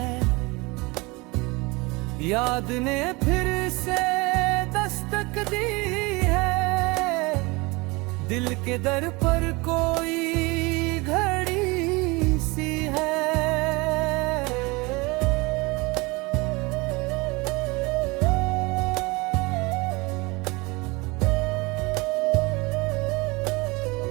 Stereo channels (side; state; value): left; quieter; 25.1 dB